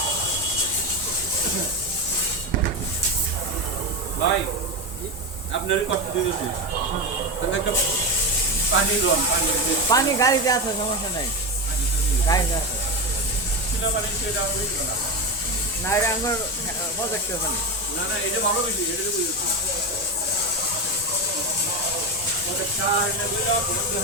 ভাই আপনার কষ্ট দিতেছি তুমি একটা পানি লোন পানি পানি গাড়িতে আছে সমস্যা নাই গাড়িতে আছে ছিল পানি সেটা আমি দিই না না এটা আমার প্রজেক্ট ওখানে না না এটা ভালো বেশি এটা তো বুঝছি ওটা চা এনে বলে বন্ধ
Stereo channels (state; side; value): normal; both; correlation 0.17